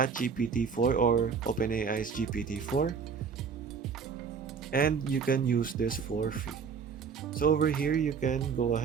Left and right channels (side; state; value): left; quieter; 6.0 dB